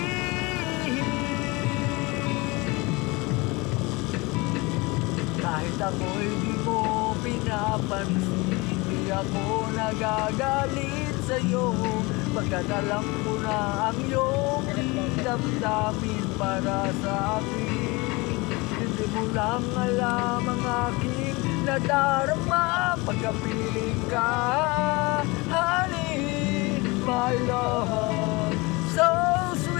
Kahit ako'y di mo pinapansin, di ako nagagalit sa'yo. Pagkat alam ko na ang iyong damdamin para sa akin. Hindi mo lang alam ang aking nadarama pagkapiling ka. Honey, my love, so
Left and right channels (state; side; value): quieter; right; 24.8 dB